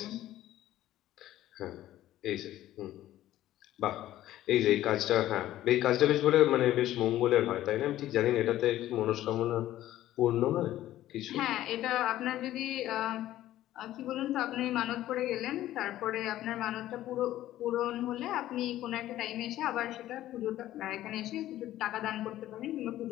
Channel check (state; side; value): quieter; right; 13.9 dB